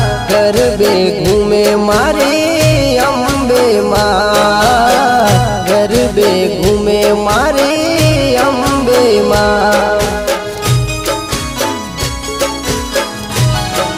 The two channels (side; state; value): both; identical; correlation 1.00